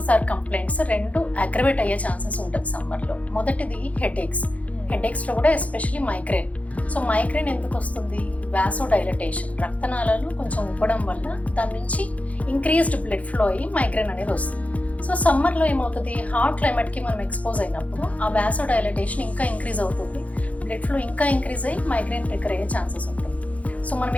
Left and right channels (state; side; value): late; right; 0.068 ms